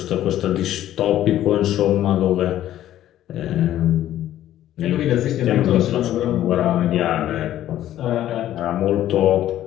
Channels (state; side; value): quieter; right; 12.6 dB